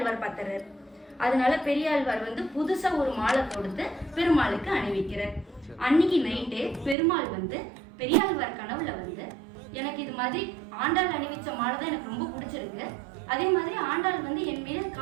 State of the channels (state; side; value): drops out; left; at 7.0 s